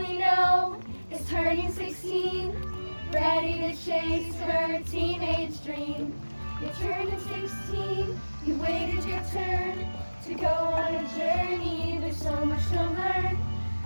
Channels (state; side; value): inverted; both; correlation -1.00